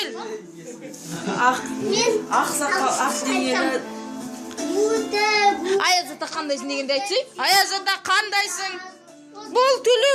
Ayaz ata qandaysın degende aytсай. Ayaz ata qandaysın? Bol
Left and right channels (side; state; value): both; identical; correlation 1.00